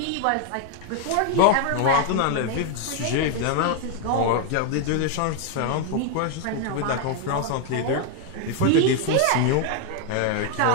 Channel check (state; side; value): different; both; correlation 0.00